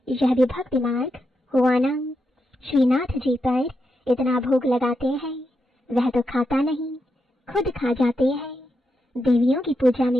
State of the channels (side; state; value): both; normal; correlation 0.85